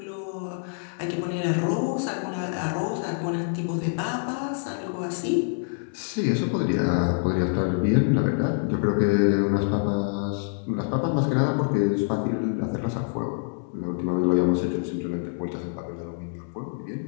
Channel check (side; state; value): right; silent; digital silence